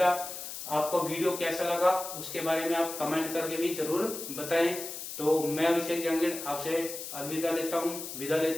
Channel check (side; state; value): left; noise; hiss, 8 dB below the sound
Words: आपको वीडियो कैसा लगा उसके बारे में आप कमेंट करके भी जरूर बताएं। तो मैं अभिषेक जहांगीर आपसे विदा